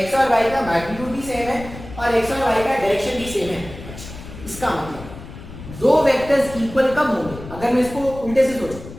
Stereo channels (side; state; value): left; noise; rumble, 14 dB below the sound